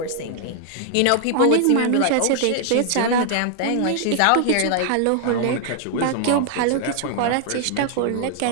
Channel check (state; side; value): different; both; correlation 0.00